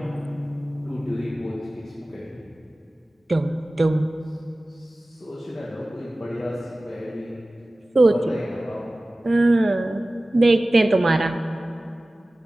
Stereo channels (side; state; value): both; normal; correlation 0.97